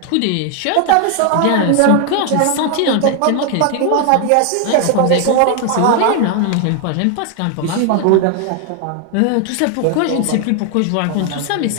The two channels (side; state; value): both; different; correlation 0.00